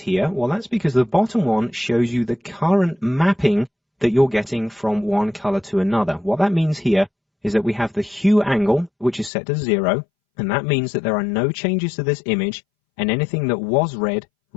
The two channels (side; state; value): right; drops out; at 9.3 s